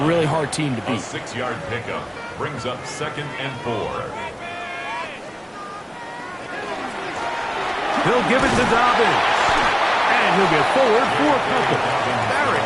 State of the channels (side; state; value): both; identical; correlation 1.00